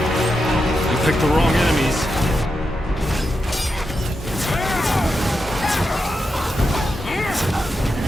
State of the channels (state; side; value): normal; both; correlation 0.87